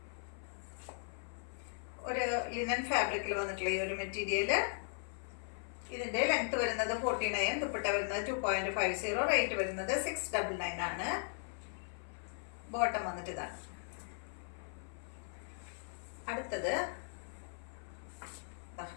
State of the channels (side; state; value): right; silent; 52 dB below the other